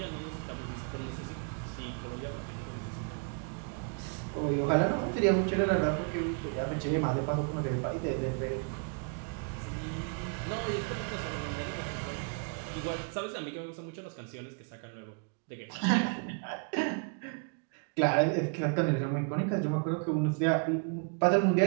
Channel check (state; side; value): quieter; left; 39.4 dB